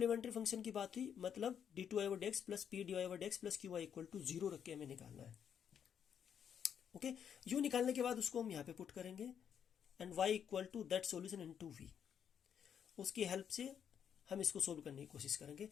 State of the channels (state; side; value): quieter; right; 8.3 dB